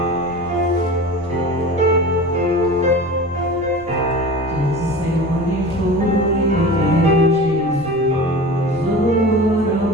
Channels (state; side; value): noise; left; rumble, 20 dB below the sound